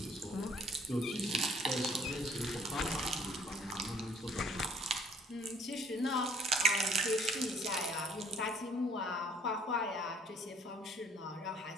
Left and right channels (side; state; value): both; normal; correlation 0.58